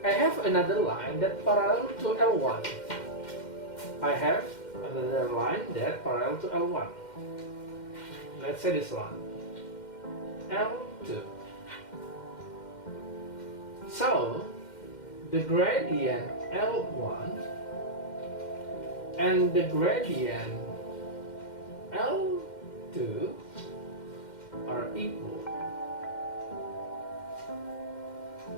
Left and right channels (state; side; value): late; right; 2.1 ms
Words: I have another line that parallel to L1. I have another line that parallel to L1. Let's say this one, L2. So the gradient L1 and the gradient L2 are equal.